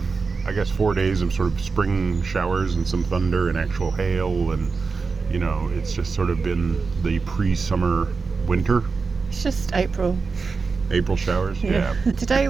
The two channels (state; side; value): quieter; left; 4.6 dB